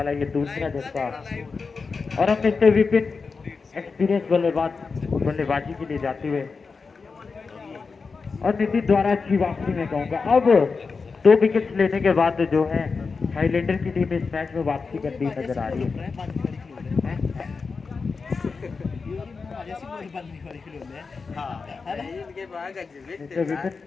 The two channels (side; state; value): right; quieter; 4.7 dB